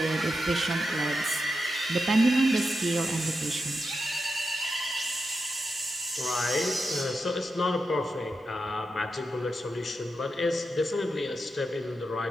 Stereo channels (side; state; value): both; normal; correlation 0.88